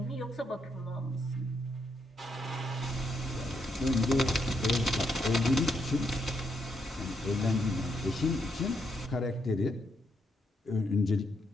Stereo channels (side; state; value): both; normal; correlation 0.78